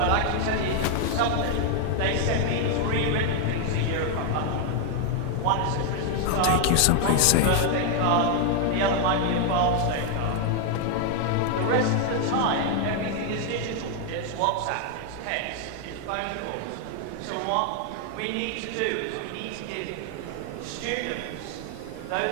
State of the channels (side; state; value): both; different; correlation 0.00